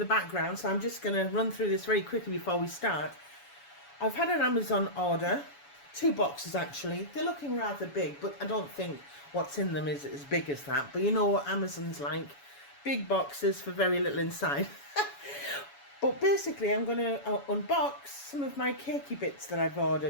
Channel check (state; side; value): late; right; 7.1 ms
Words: background, so I'm just going to run through this very quickly before we start. I've had an Amazon order, 2 boxes actually. They're looking rather big, but I don't think what's in them is as big as that. But you know what Amazon's like. Big boxes for very little inside. But basically I'm going to unbox some of my cakey bits that I've